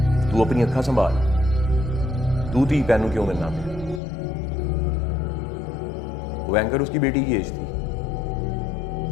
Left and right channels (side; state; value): right; drops out; at 4.0 s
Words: तू अपनी अक्खा संभाल, तू थी पहनू क्यों मिलना पे? वो एंकर उसकी बेटी की एज थी,